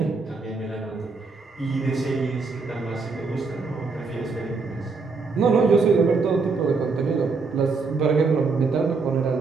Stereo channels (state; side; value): quieter; left; 4.4 dB